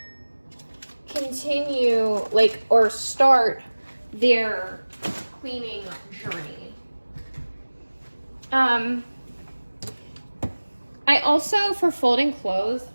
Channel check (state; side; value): inverted; both; correlation -1.00